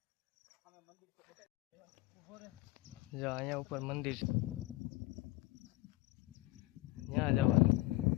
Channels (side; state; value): right; quieter; 18.9 dB